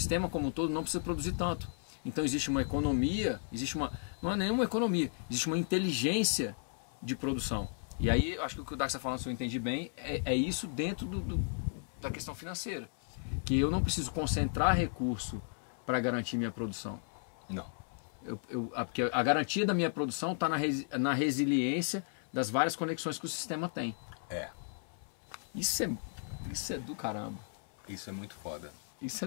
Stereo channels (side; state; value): right; silent; 55 dB below the other